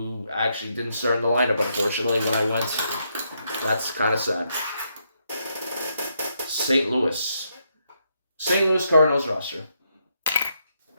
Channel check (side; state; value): both; inverted; correlation -0.78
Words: actually didn't start in the lineup, unfortunately, when I went. That's kind of sad. St. Louis Cardinals roster.